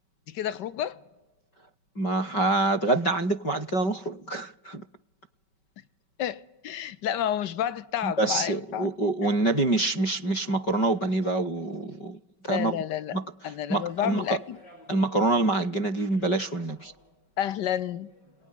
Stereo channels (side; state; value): right; late; 5.2 ms